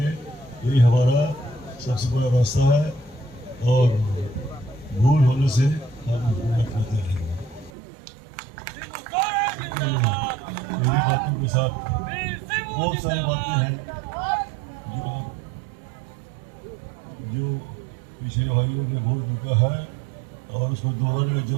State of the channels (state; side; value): drops out; left; at 7.7 s